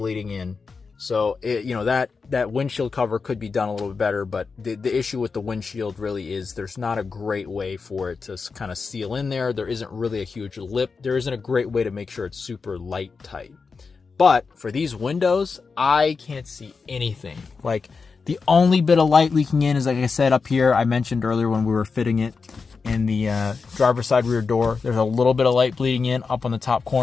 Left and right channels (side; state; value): right; quieter; 4.9 dB